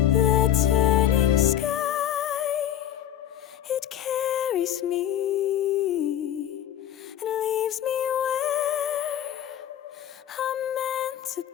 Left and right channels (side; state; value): right; quieter; 10.7 dB